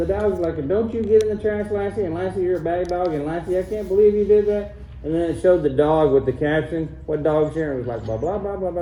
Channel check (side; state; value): both; identical; correlation 1.00